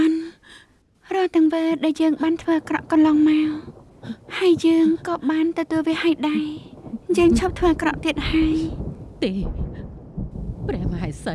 ន់រាល់ទាំងវាដែលយើងបានធ្វើអាក្រក់កន្លងមកហើយយើងក៏បានទទួលវាហើយដែរយើងឈប់ធ្វើអាក្រក់ទៀតហើយ ទេព្រះមហេស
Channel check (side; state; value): both; identical; correlation 1.00